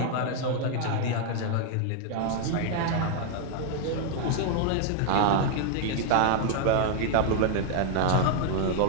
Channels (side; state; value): both; different; correlation 0.00